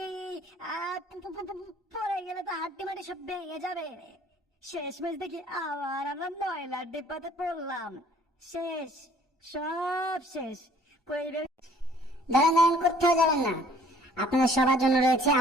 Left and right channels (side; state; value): both; normal; correlation 0.57